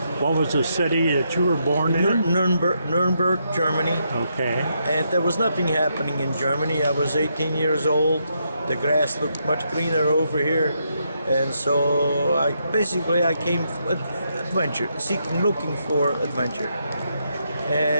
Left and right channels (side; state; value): both; inverted; correlation -0.79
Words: What was the city that you were born in? Nuremberg, Germany. Okay. And there was nothing happening in Germany. I was 18 years old. The grass looked much greener over here. And so I came adventure, looking for adventure.